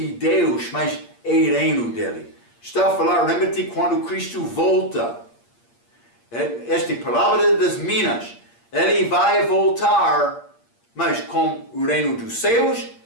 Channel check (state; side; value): late; right; 8.6 ms